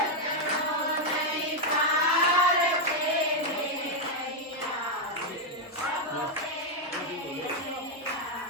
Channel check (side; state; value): both; normal; correlation 0.01